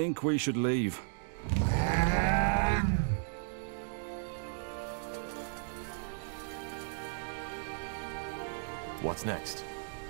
we should leave. What's next?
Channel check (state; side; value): silent; left; digital silence